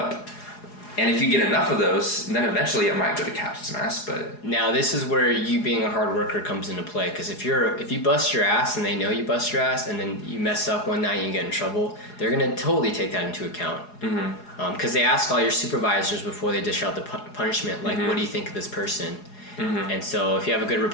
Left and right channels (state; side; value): late; right; 4.8 ms